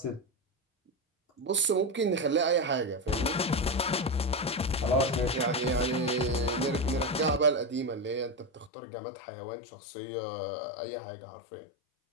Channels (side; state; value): right; drops out; at 8.7 s